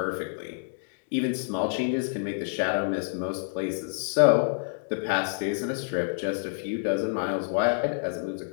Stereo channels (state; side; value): silent; right; digital silence